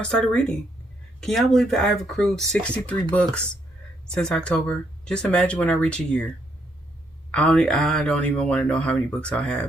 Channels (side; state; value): both; normal; correlation 0.74